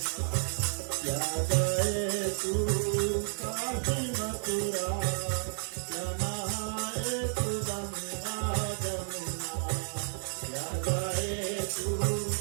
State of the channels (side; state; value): left; silent; digital silence